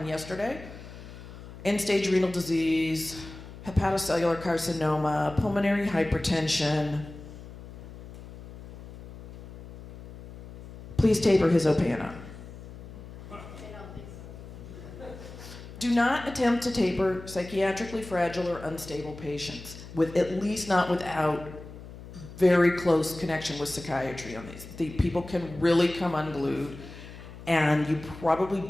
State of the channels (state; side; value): noise; left; hum, 15 dB below the sound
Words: yesterday. End-stage renal disease, hepatocellular carcinoma, pulmonary hypertension. Please taper his Opana. Do not attempt to taper psychiatrically fragile or unstable patients, at least not without very close connection with psychiatry on these. The people can really come unglued, and you probably